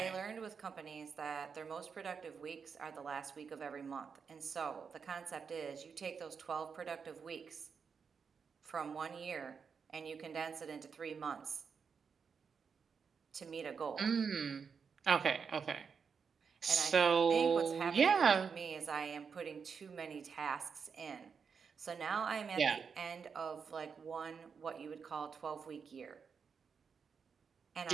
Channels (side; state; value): left; quieter; 6.0 dB